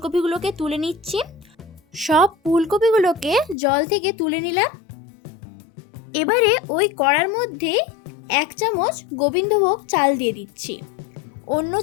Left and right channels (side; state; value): right; drops out; at 3.6 s